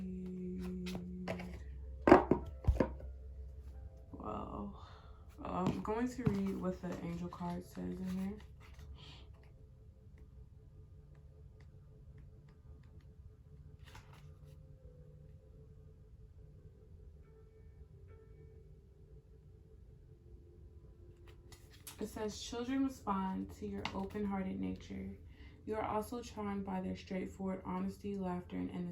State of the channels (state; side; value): identical; both; correlation 1.00